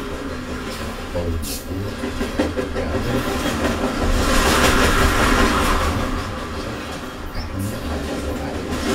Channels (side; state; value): both; identical; correlation 1.00